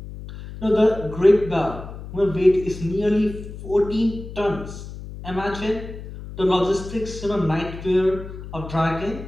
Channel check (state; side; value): noise; left; hum, 12 dB below the sound